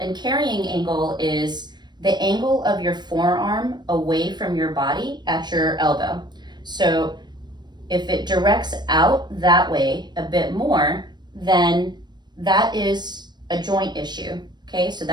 and carrying angle is the angle of your forearm away from your body at your elbow. So if it directs out that way a bit more, then that is a joint issue, okay? So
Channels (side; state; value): left; late; 0.21 ms